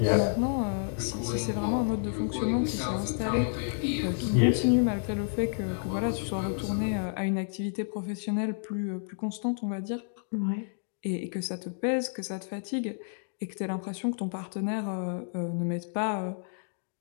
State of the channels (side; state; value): right; silent; digital silence